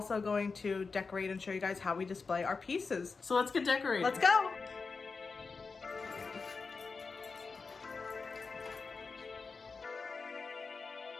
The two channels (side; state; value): right; quieter; 4.6 dB